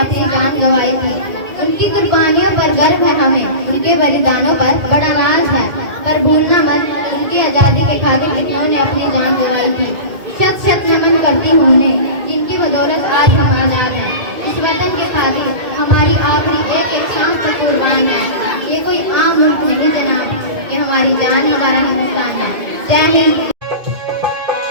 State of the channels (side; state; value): left; late; 2.2 ms